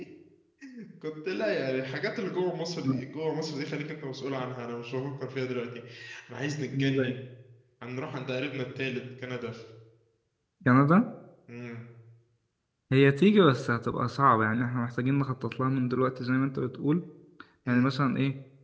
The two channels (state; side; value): identical; both; correlation 1.00